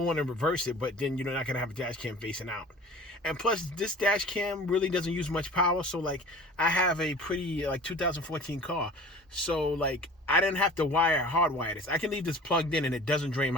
one and reverse it, but then you're not going to have a dash cam facing out. And plus, this dash cam really doesn't use much power. So like, I have a pretty 2014 car. So like, I didn't have to hardwire this. I can leave this plugged in and it doesn't drain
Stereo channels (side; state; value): both; normal; correlation 0.42